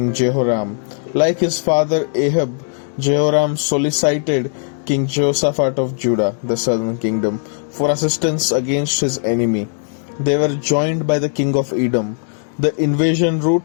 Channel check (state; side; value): silent; right; digital silence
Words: Jehoram. Like his father Ahab, Jehoram solicited King Jehoshaphat of Judah, the southern kingdom, for assistance against his enemy. They were joined by the king of Edom. The invasion